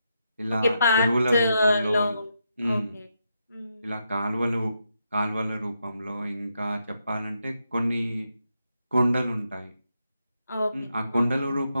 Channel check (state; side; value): inverted; both; correlation -0.82